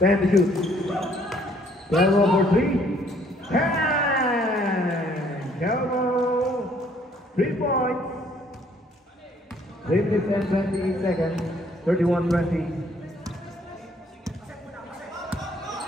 Ten to shoot. 12 for 3. And Kelmo. 3 points. 3 minutes and 28 seconds. 31-20.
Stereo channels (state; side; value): normal; both; correlation 0.63